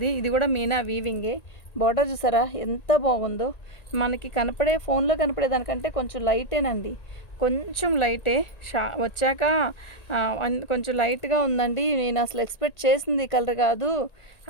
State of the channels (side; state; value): right; late; 1.9 ms